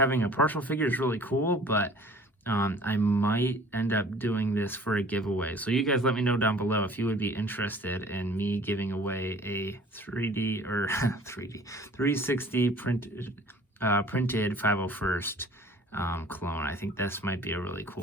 a partial figure is really cool, but I might end up doing this for a giveaway. So you guys let me know down below if you would be interested in me giving away a 360 printed 501st clone. I think this might be a really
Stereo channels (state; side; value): normal; both; correlation 0.50